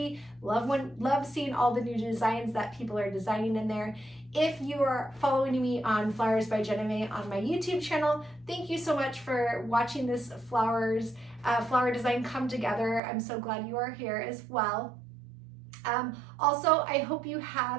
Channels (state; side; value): drops out; left; at 13.0 s